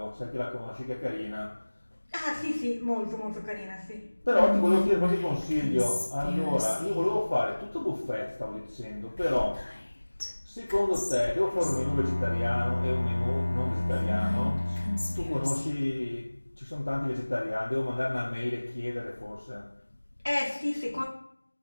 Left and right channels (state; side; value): inverted; both; correlation -1.00